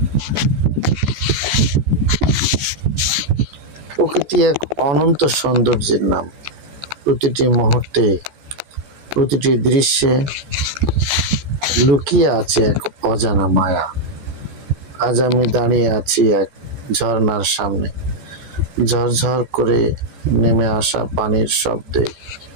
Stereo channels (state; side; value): late; left; 14 ms